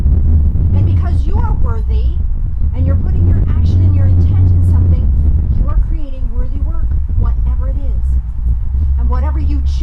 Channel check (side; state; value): both; identical; correlation 1.00